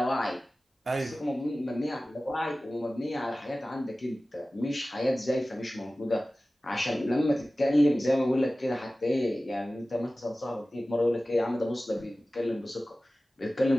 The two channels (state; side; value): normal; both; correlation 0.97